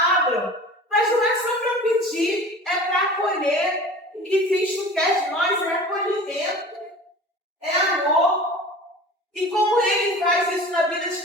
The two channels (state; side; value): normal; both; correlation 0.40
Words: Mas não é só para pedir, é para acolher. O que Cristo quer de nós é acolhimento, é amor. E como ele faz isso na vida de